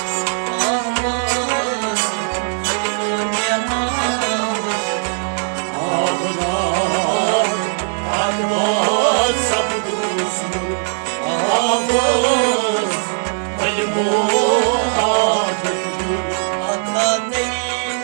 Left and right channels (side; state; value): left; silent; digital silence